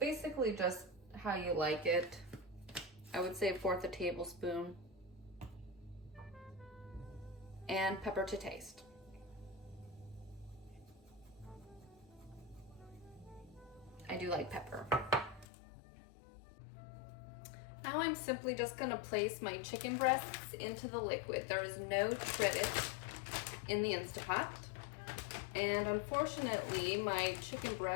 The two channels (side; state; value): right; drops out; at 15.5 s